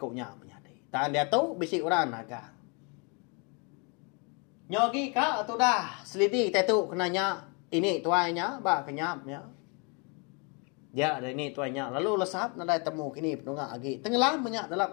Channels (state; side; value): quieter; right; 33.7 dB